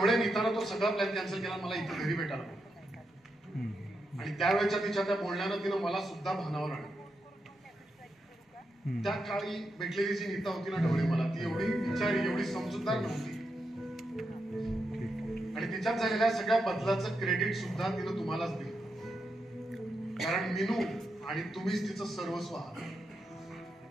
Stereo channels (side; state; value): both; normal; correlation 0.85